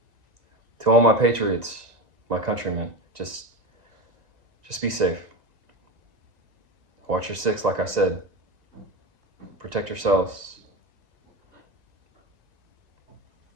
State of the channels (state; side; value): late; left; 1.9 ms